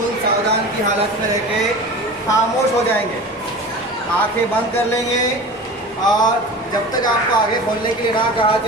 सावधान की हालत में रह के खामोश हो जाएंगे, आंखें बंद कर लेंगे और जब तक आपको आगे खोलने के लिए ना कहा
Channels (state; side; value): normal; both; correlation 0.35